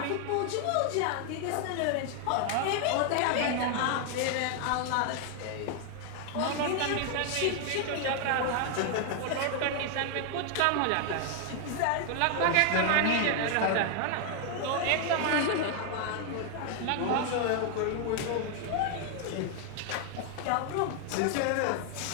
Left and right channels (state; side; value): different; both; correlation 0.00